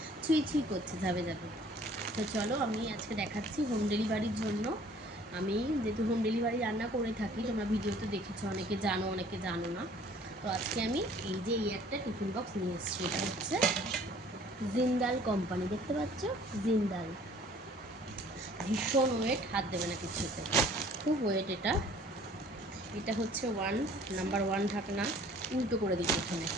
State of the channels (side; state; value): both; normal; correlation 0.54